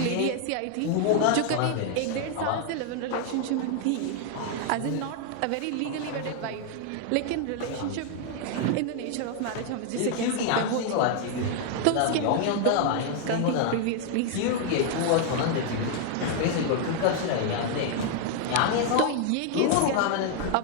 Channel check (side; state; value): both; different; correlation 0.00